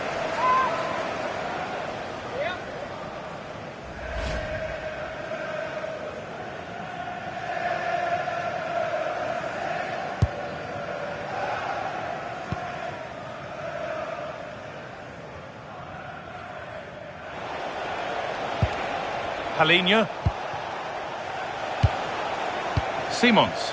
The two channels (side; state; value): both; identical; correlation 1.00